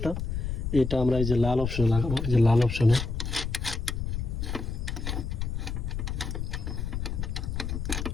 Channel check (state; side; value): noise; left; rumble, 3 dB below the sound